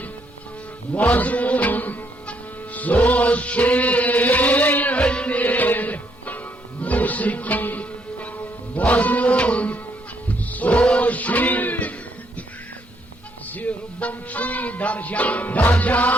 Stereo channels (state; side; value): normal; both; correlation 0.72